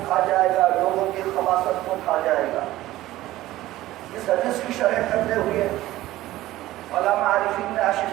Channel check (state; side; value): quieter; left; 16.0 dB